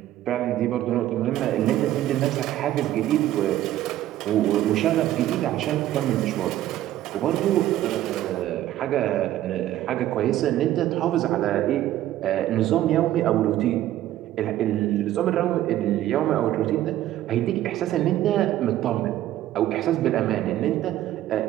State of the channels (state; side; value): quieter; left; 13.5 dB